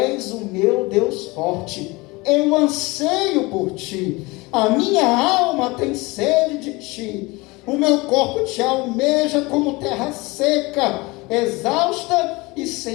o meu Deus forte, eu anseio por ti, a minha alma tem sede de ti, o meu corpo te almeja como terra seca, exausta e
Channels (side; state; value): right; quieter; 23.7 dB